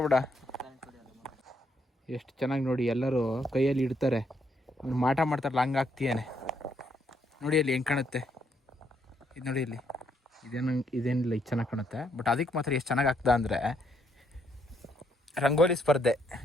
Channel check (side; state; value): both; normal; correlation 0.74